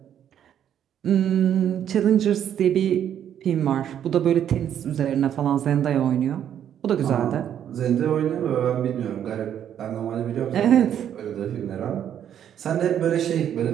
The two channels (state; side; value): quieter; left; 9.7 dB